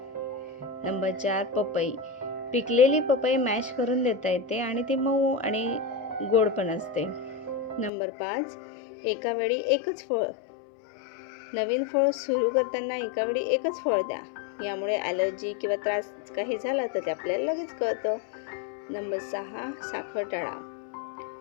नंबर 4 पपई. पिकलेली पपई मॅश करून देता येते आणि ती मऊ आणि गोड पण असते. नंबर 5 एका वेळी एकच फळ. नवीन फळ सुरू करताना एका वेळी एकच फळ द्या. यामुळे ॲलर्जी किंवा त्रास काही झाला तर ते आपल्याला लगेच कळतं. नंबर 6 साखर टाळा.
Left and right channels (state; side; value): drops out; right; at 7.9 s